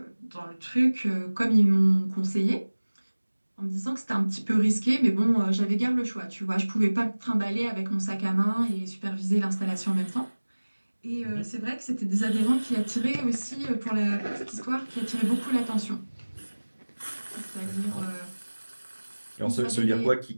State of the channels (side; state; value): both; inverted; correlation -1.00